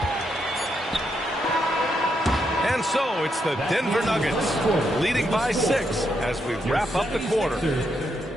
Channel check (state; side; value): normal; both; correlation 0.80